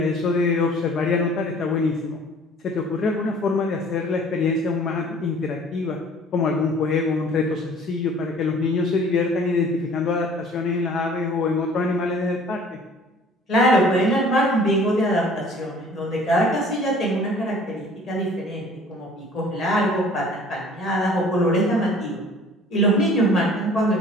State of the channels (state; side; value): normal; both; correlation 0.51